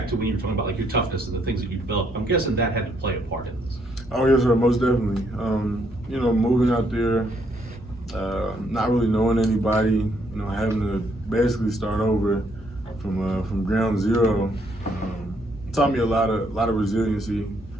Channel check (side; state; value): both; normal; correlation 0.71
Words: to when you were talking about like your toughness and the things that you developed. I'm guessing that had to play a part in this. Oh yes, sir, most definitely. You know, moving out there, not really knowing anybody, you know, having to basically start over from ground zero, taught me a lot of resiliency,